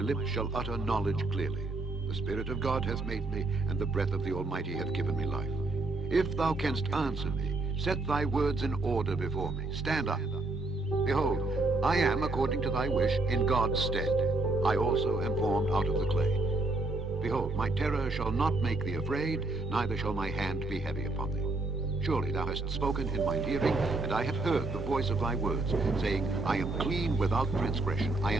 shall utter knowledge clearly. The Spirit of God hath made me, and the breath of the Almighty hath given me life. If thou canst answer me, set thy words in order before me. Stand up. Behold, I am, according to thy wish, in God's stead. I also am formed out of the clay. Behold, my terror shall not make thee afraid, neither shall my hand be heavy upon thee. Surely thou hast spoken in mine hearing, and I have heard the voice of thy words, saying, I am clean without transgression, I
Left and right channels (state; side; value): quieter; left; 3.1 dB